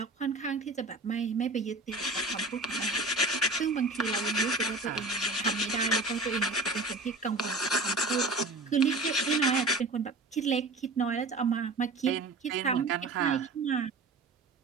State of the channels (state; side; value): quieter; left; 3.2 dB